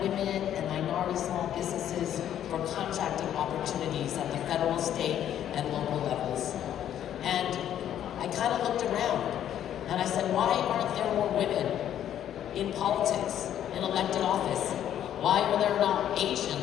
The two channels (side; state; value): right; quieter; 10.6 dB